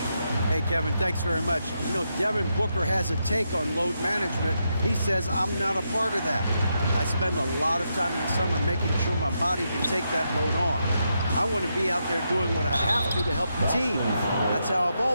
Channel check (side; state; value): both; inverted; correlation -0.83